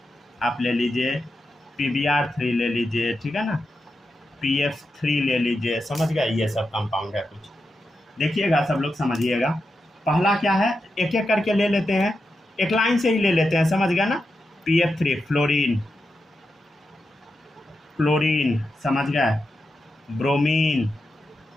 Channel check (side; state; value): both; normal; correlation 0.88